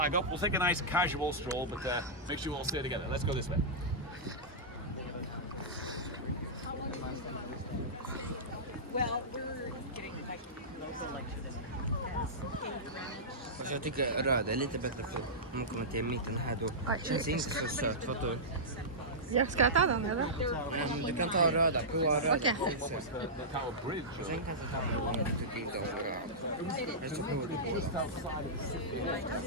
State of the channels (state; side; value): normal; both; correlation -0.14